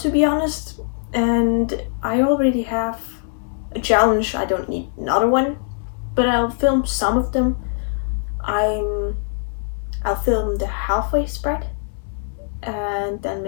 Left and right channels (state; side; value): silent; right; digital silence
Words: be honest. And I already have a challenge. I don't need another one, but I'll film some of them. I'll film the halfway spread, and then